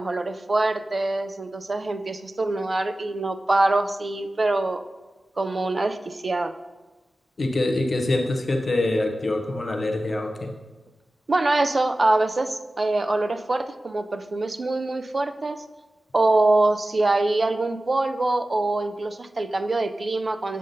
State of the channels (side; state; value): both; normal; correlation 0.95